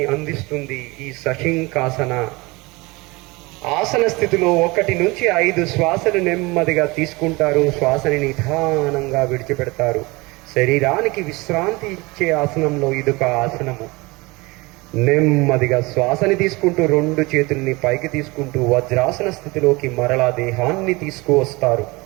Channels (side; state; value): left; quieter; 24.0 dB